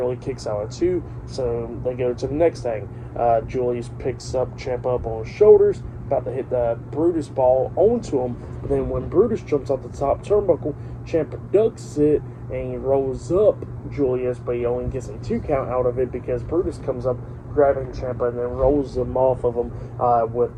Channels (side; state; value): both; identical; correlation 1.00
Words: kicks out at 2, so they go to the next thing. Julius picks up Ciampa up on his shoulders, about to hit the Brutus ball onto him. But then when Brutus jumps off the top turnbuckle, Ciampa ducks it and he rolls up Julius, but he only gets a 2 count out of it because Brutus comes up grabbing Ciampa and then rolls him off of him